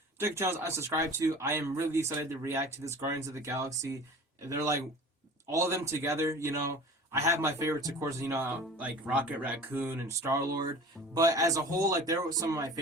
Check the channels I subscribe to. I am really excited to react to this Guardians of the Galaxy. They're like all of them together, you know. I have my favorites, of course, you know, like Rocket Raccoon and Star-Lord. But as a whole, like, there were some of my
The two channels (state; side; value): normal; both; correlation 0.40